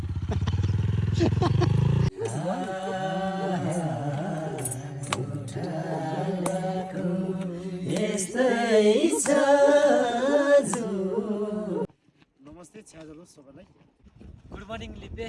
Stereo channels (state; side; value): identical; both; correlation 1.00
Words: नमस्ते छ्याजलो सबैलाई गुड मर्निङ लिपे